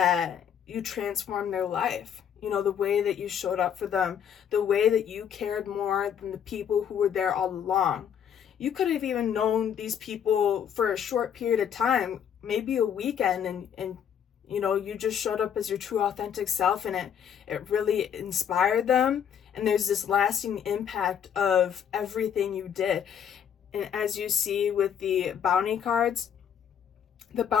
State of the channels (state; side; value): quieter; right; 8.5 dB